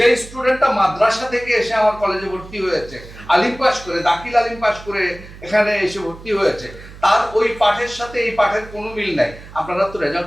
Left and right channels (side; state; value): right; noise; hum, 17 dB below the sound